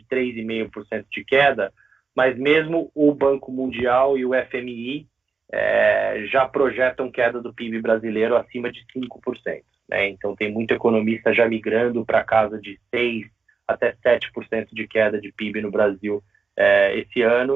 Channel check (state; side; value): quieter; left; 4.8 dB